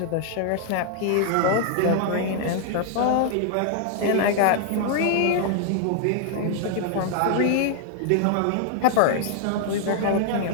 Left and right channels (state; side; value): different; both; correlation -0.01